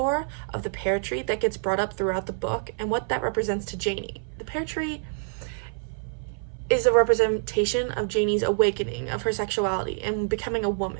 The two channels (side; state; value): left; silent; 55 dB below the other